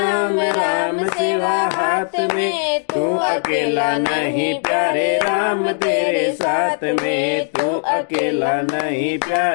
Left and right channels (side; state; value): right; silent; digital silence